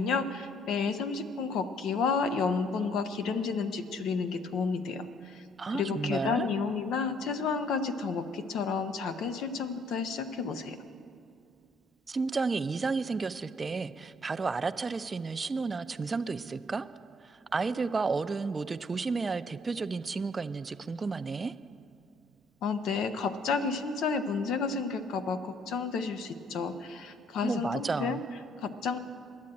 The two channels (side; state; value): both; normal; correlation 0.64